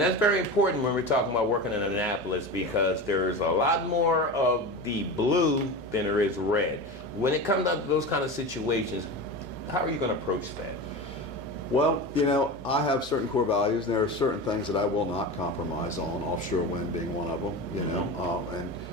that's very important when we're talking about working in Annapolis, because there's a lot more of the blue than there is red. When it comes down to those kind of situations, how are you going to approach that? Well, I have certain core values, and there are certain things that I will not compromise on. Offshore wind being one of them.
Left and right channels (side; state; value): both; normal; correlation 0.27